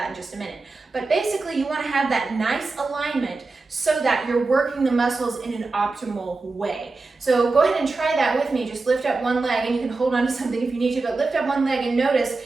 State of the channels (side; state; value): left; quieter; 3.7 dB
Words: in just a minute. But basically, you want to have that nice alignment so that you're working the muscles in an optimal way. So go ahead and try that with me. Just lift up one leg, and you can hold on to something if you need to, but lift up one leg and notice